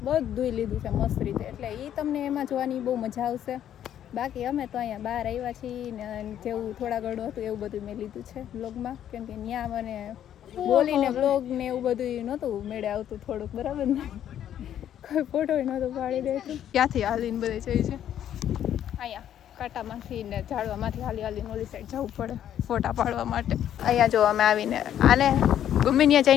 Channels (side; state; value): right; quieter; 10.5 dB